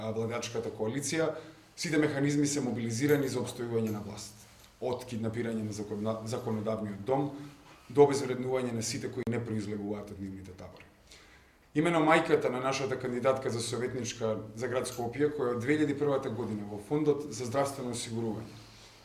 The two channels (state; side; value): identical; both; correlation 1.00